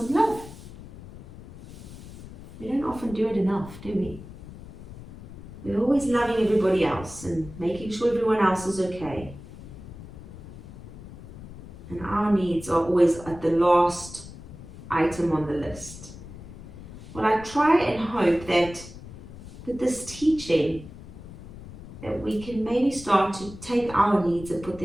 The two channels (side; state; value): left; noise; rumble, 15 dB below the sound